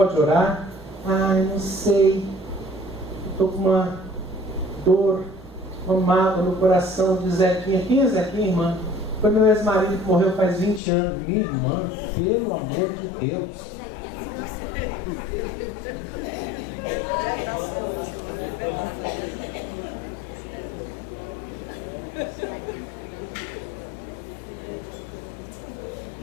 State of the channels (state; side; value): drops out; right; at 10.8 s